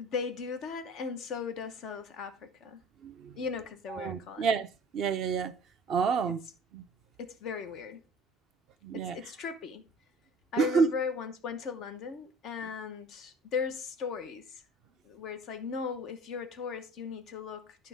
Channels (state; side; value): normal; both; correlation 0.48